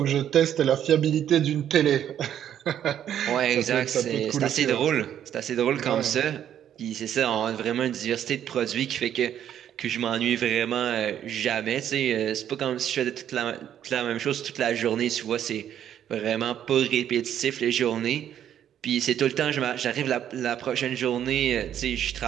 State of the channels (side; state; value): left; quieter; 10.1 dB